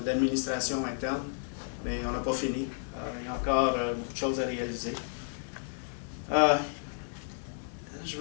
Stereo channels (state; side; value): silent; right; digital silence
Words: d'administration interne, mais on n'a pas fini. Il y a encore beaucoup de choses à réaliser. Je